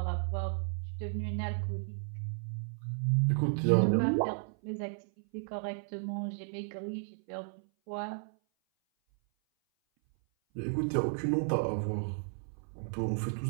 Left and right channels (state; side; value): silent; left; 55 dB below the other